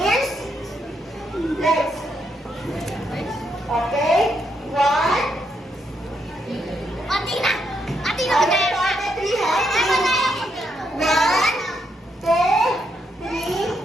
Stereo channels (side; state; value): both; normal; correlation 0.78